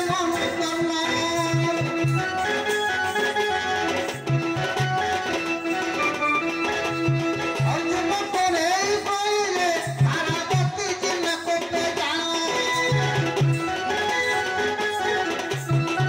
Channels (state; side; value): identical; both; correlation 1.00